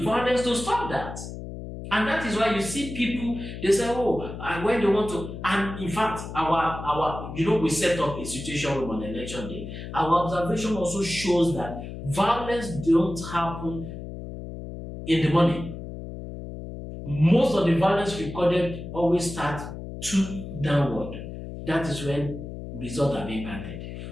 violence to stop that. And that is why you see people, they say, and when they want to, and in fact, our we set up a situation room on election day. Our observation also shows that violence don't happen in the morning. Most of the violence recorded always start 2 downward. That is when results are being counted.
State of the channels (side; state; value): left; noise; hum, 9 dB below the sound